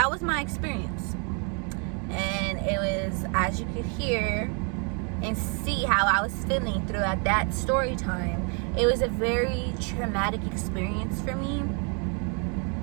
was my experience. And it was, as you could hear and see how I was feeling throughout that story time, it was a very traumatic experience for me.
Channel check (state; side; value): quieter; left; 37.1 dB